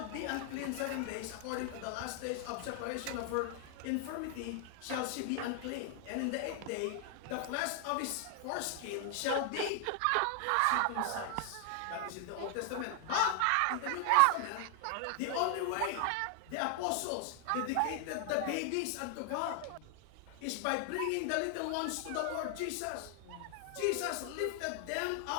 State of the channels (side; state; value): both; different; correlation 0.00